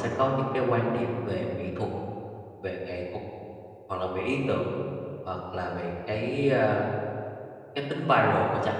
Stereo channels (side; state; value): both; identical; correlation 1.00